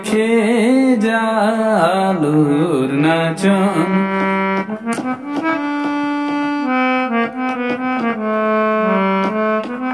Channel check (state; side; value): identical; both; correlation 1.00